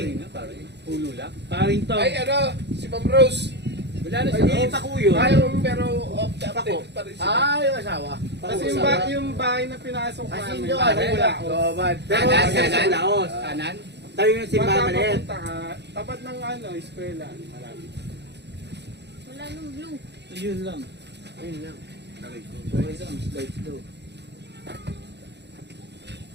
Ulo lang. Paring to. Ay, ano? Si Ma'am Rose. wala na siya. Pakuyo. Ay, pero off the update pa rin siya. Ah, yung asawa. Kasi yung bahay na pinasok Kasi namin, yung parang ano, wala ako. Pero sa Laos. Kanan? Tayo yung simbahan na yan. Papunta ka, tapat ng ano, eskwela. Malapit. Wala nung blue. Yun lang. Ayun lang. Okay lang, slide daw.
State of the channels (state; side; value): late; left; 0.50 ms